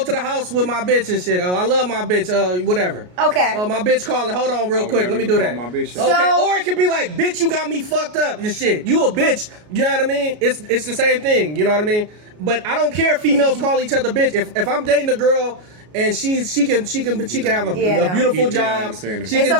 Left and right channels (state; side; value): late; left; 33 ms